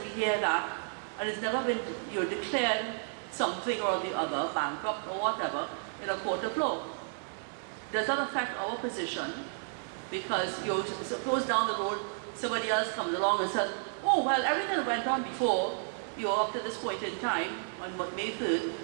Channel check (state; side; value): silent; left; digital silence